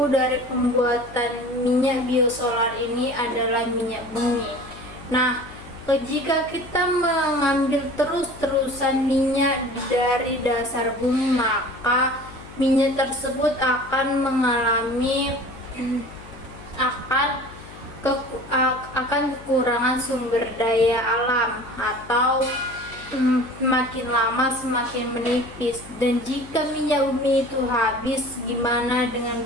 dari pembuatan minyak biosolar ini adalah minyak bumi. Nah, jika kita mengambil terus-terusan minyak dari dasar bumi, maka minyak tersebut akan mengalami kekurangan sumber daya alam atau semakin lama semakin menipis. Dan jika minyak bumi itu habis, gimana dengan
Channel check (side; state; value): left; noise; hum, 18 dB below the sound